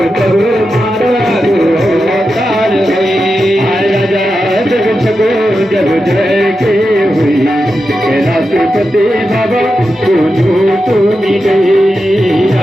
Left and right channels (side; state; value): both; normal; correlation 0.89